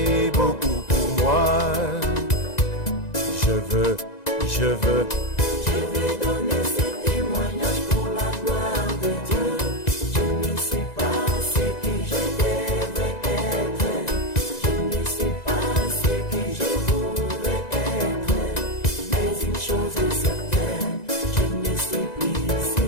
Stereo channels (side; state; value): right; late; 2.0 ms